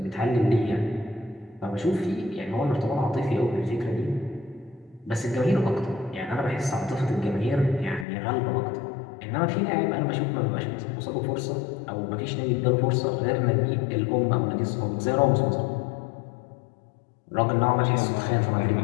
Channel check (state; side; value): drops out; right; at 8.1 s